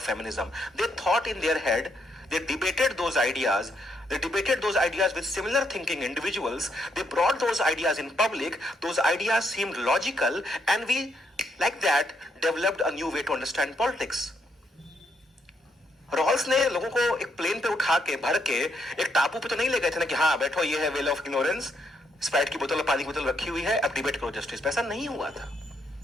feminism. They thought in their head, they debated those ideas. They debated those ideas with similar thinking individuals. They brought those ideas in public. Those ideas seemed logical, and we, like that, developed a new way to understand politics. Rawls ने लोगों को एक प्लेन पे उठा के भर के एक टापू पे तो नहीं ले गए थे ना कि हाँ बैठो, ये है वेल ऑफ इग्नोरेंस, स्प्राइट की बोतल और पानी की बोतल रखी हुई है, अब डिबेट करो जस्टिस पे। ऐसा नहीं हुआ था।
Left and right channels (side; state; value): both; normal; correlation 0.76